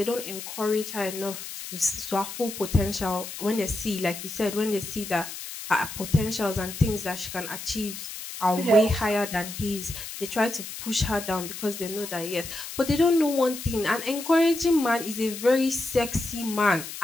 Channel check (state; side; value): noise; left; hiss, 10 dB below the sound